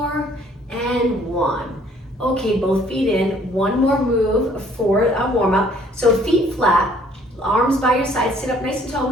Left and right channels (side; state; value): both; normal; correlation 0.60